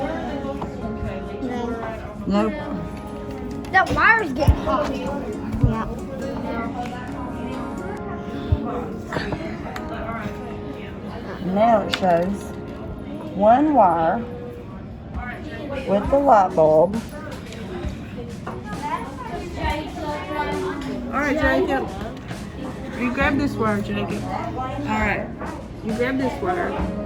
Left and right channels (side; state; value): both; identical; correlation 1.00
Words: No. Nope. That wire's getting hot. Yeah. Now it shows one wire with the light bulb. Alright, Jacob. You grab this wire, Jacob. Alright. You grab this wire.